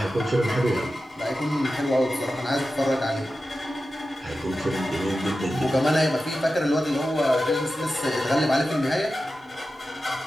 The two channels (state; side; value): normal; both; correlation 0.93